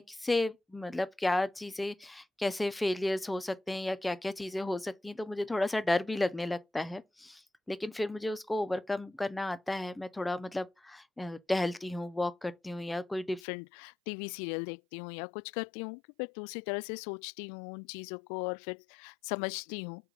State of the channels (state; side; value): drops out; right; at 13.4 s